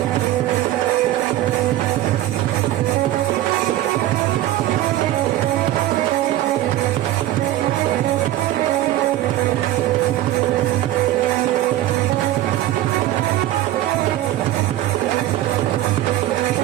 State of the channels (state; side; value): quieter; left; 14.3 dB